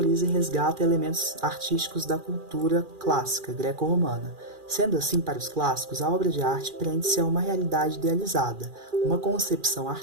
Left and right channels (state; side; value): late; left; 2.4 ms